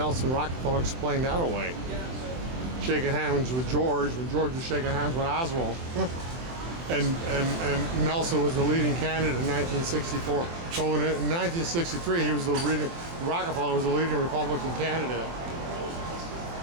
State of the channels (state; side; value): late; left; 23 ms